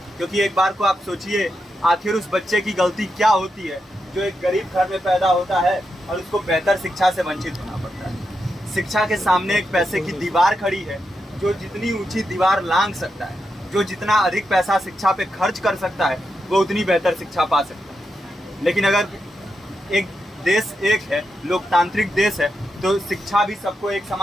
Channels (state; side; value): normal; both; correlation 0.86